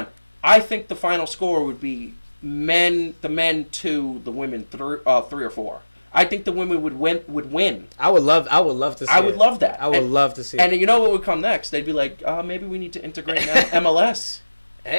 I think the final score would be the men 2, the women 3 or 4. I think the women would win. I would love to see I would love that. I would love to see and you know what would come next? They'd be like, maybe we need to integrate MLS.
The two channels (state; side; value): inverted; both; correlation -1.00